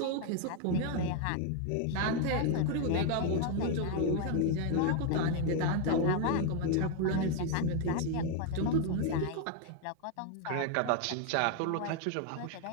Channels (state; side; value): different; both; correlation 0.01